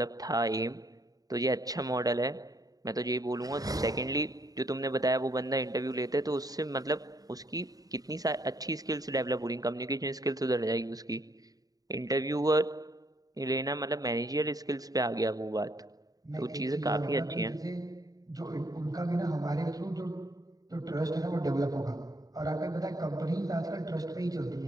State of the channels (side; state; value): left; late; 0.18 ms